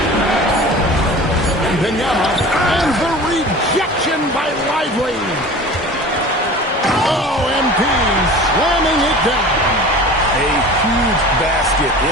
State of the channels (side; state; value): both; normal; correlation 0.39